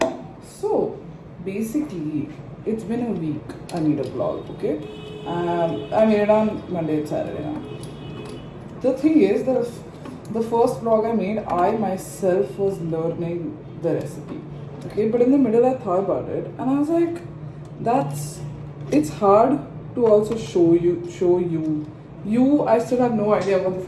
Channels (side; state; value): both; identical; correlation 1.00